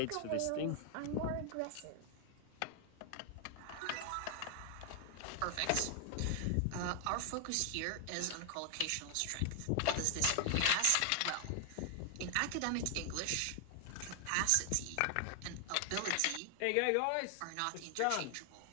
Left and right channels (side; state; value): both; different; correlation 0.00